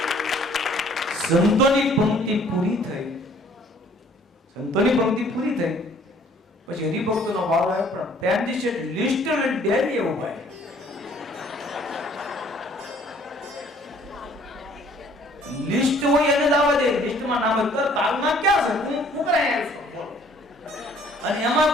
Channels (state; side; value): normal; both; correlation 0.58